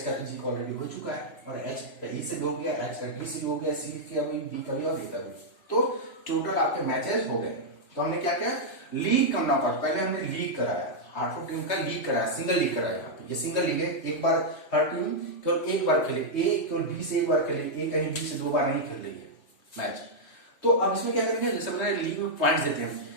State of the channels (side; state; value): right; late; 3.0 ms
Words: का तो जी का ऑलरेडी हो चुका है, और एच का ई से भी हो गया, एच का डी से भी हो गया, सी का भी, बी का भी और डी का भी। तो टोटल आपके मैचेस हो गए। तो हमने क्या किया, लीग करना पड़ा, पहले हमने लीग कराया, 8 टीम का लीग कराया, सिंगल लीग कराया। यहाँ पे ये सिंगल लीग है, एक बार हर टीम केवल एक बार खेले, ए केवल बी से एक बार खेले, ए कहीं बी से 2 बार नहीं खेल रही है मैच। तो अब इसमें क्या करेंगे, जैसे हमने लीग में पॉइंट्स देते हैं,